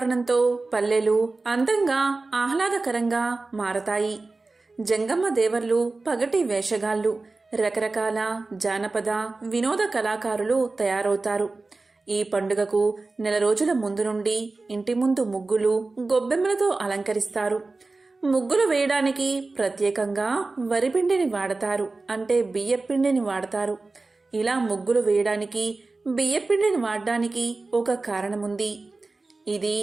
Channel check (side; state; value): left; quieter; 3.5 dB